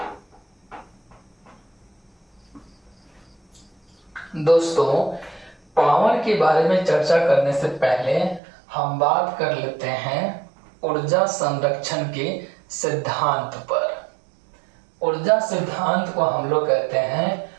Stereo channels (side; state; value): left; drops out; at 8.4 s